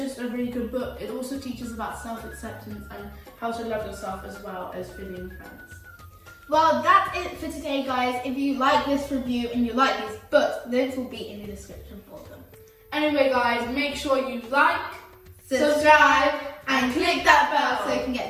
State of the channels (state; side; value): identical; both; correlation 1.00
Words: a really good book. It also teaches about self-acceptance and how to love yourself, as well as Philly and Friends. Well, that's it for today, guys. If you like this review and you like these books, links will be in the description for them. Anyway, guys, make sure you like, subscribe, and click that bell so you can